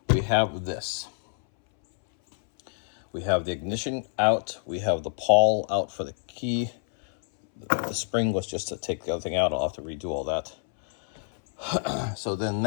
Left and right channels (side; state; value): right; silent; 60 dB below the other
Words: We have this. We have the ignition out. We have the pawl out for the key. The spring was just to take the other thing out. I'll have to redo all that. So then